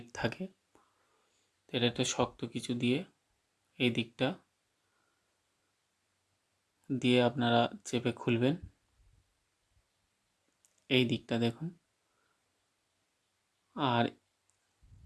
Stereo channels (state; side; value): identical; both; correlation 1.00